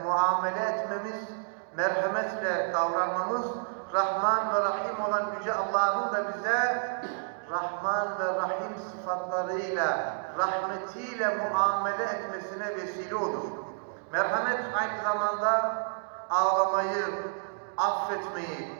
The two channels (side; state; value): left; silent; digital silence